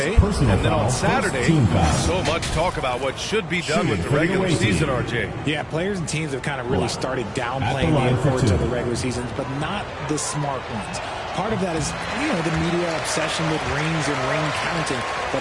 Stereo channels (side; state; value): both; identical; correlation 1.00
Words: and then on Saturday, so much talk about what should be done with the regular season, RJ. Yeah, players and teams have kind of really started downplaying the importance of the regular seasons, but not the smart ones. Part of that is, you know, the media obsession with rings and ring counting,